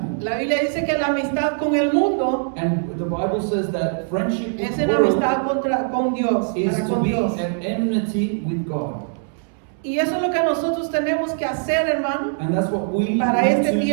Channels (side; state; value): left; silent; 64 dB below the other